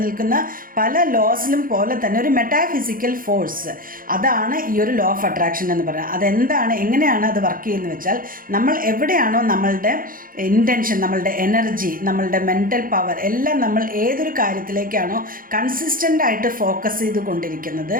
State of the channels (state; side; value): late; left; 0.41 ms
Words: പല ലോസിലും പോലെ തന്നെ ഒരു മെറ്റാഫിസിക്കൽ ഫോഴ്സ്, അതാണ് ഈ ഒരു ലോ ഓഫ് അട്രാക്ഷൻ എന്ന് പറയുന്നത്. അതെന്താണ്, എങ്ങനെയാണ് അത് വർക്ക് ചെയ്യുന്നത് വെച്ചാൽ, നമ്മൾ എവിടെയാണോ നമ്മളുടെ ഇൻറ്റൻഷൻ, നമ്മളുടെ എനർജി, നമ്മളുടെ മെൻ്റൽ പവർ എല്ലാം നമ്മൾ ഏതൊരു കാര്യത്തിലേക്കാണോ കൺസിസ്റ്റൻ്റ് ആയിട്ട് ഫോക്കസ് ചെയ്ത് കൊണ്ടിരിക്കുന്നത്,